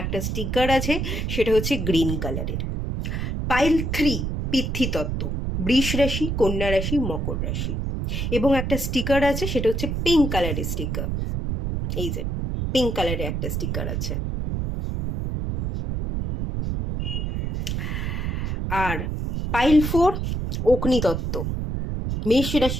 একটা স্টিকার আছে, সেটা হচ্ছে গ্রিন কালারের। পাইল 3 পিতৃতত্ত্ব, বৃষ রাশি, কন্যা রাশি, মকর রাশি এবং একটা স্টিকার আছে, সেটা হচ্ছে পিঙ্ক কালারের স্টিকার। এই যে পিঙ্ক কালারের একটা স্টিকার আছে। আর পাইল 4 অগ্নিতত্ত্ব, মেষ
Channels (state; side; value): noise; right; rumble, 2 dB below the sound